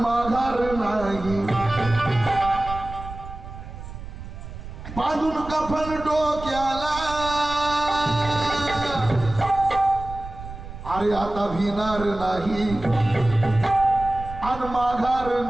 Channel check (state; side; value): noise; right; rumble, 12 dB below the sound